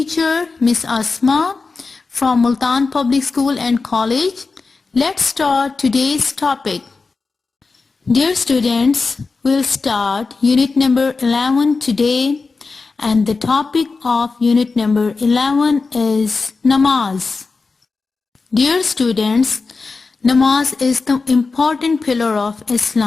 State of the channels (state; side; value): quieter; right; 4.2 dB